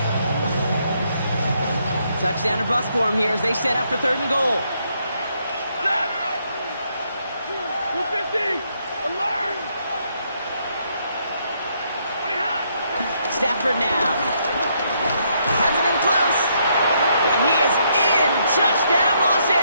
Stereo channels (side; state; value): both; inverted; correlation -0.74